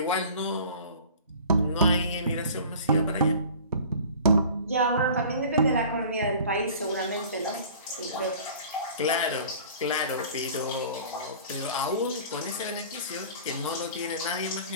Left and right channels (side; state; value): both; inverted; correlation -0.45